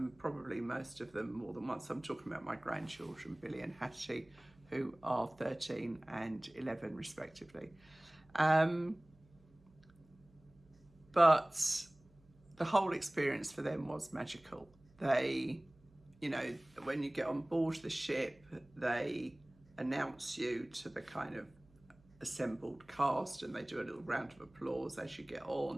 probably most of them more than once. I'm talking about my grandchildren, Billy and Hattie, who are 13 and 11 respectively. But the whole experience for them was magical. They, when you get on board the ship, they announce you to the kind of assembled cast, and they do a little round of applause as you get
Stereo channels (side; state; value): right; noise; hum, 29 dB below the sound